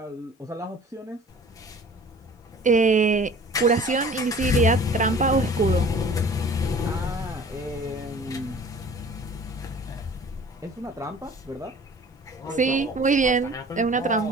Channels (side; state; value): both; normal; correlation 0.47